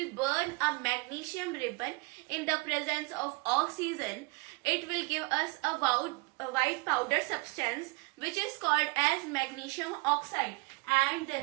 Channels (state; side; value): quieter; left; 27.8 dB